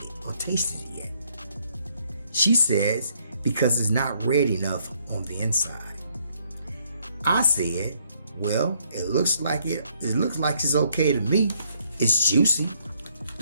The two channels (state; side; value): inverted; both; correlation -0.69